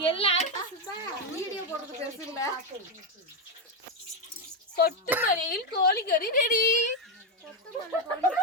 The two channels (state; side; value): normal; both; correlation 0.06